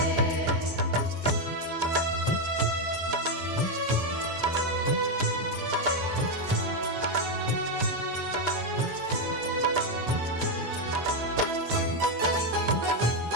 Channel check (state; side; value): late; left; 13 ms